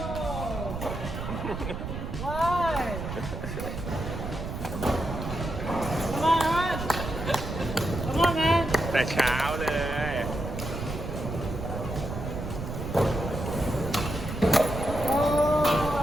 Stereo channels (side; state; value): right; noise; rumble, 6 dB below the sound